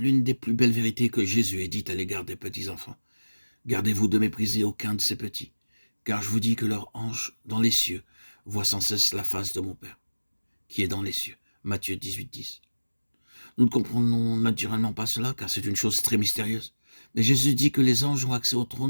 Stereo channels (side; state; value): both; inverted; correlation -1.00